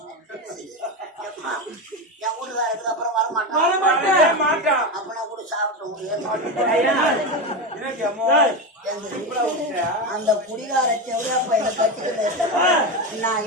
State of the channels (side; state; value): both; normal; correlation 0.16